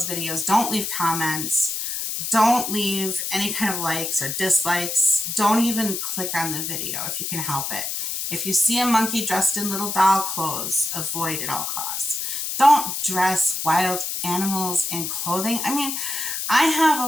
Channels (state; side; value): noise; left; hiss, 3 dB below the sound